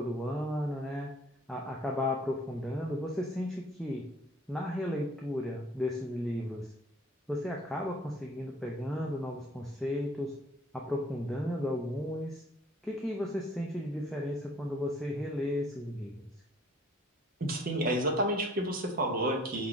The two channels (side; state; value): both; normal; correlation 0.55